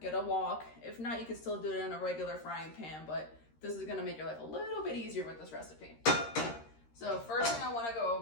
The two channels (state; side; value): late; right; 13 ms